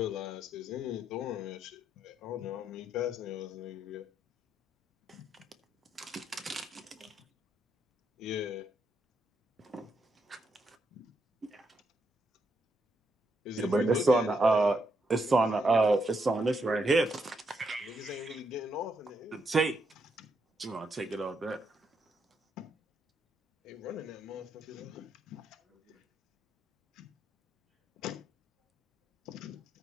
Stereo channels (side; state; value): both; normal; correlation 0.79